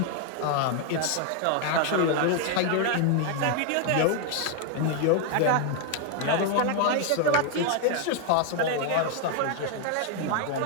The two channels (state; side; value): different; both; correlation 0.00